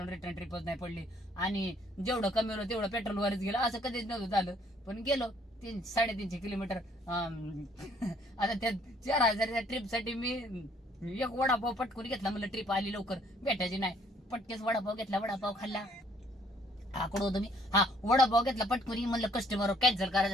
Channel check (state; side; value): normal; both; correlation 0.63